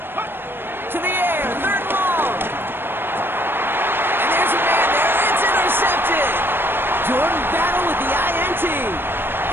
To the air, 3rd and long. And there's a man there. It's intercepted. Jordan Battle with the INT.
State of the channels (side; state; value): left; late; 0.10 ms